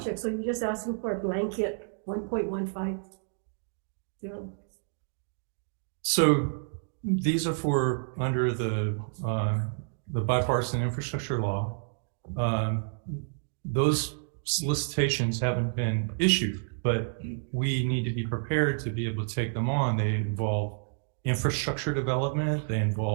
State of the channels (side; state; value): left; silent; digital silence